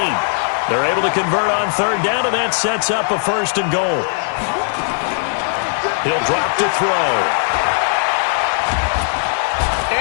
They're able to convert on third down, and that sets up a 1st and goal. He'll drop to throw.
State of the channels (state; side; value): silent; right; digital silence